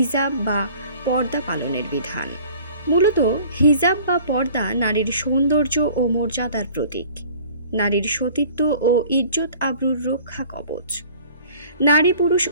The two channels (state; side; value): inverted; both; correlation -0.49